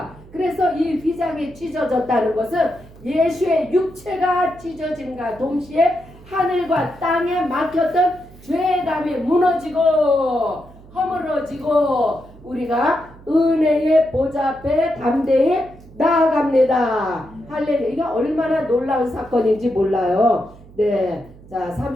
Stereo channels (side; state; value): right; noise; hum, 21 dB below the sound